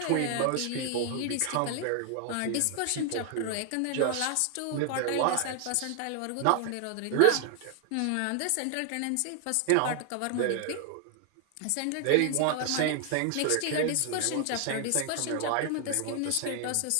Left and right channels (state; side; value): different; both; correlation 0.00